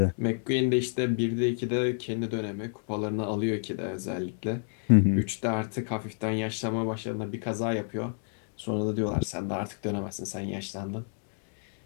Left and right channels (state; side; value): silent; right; digital silence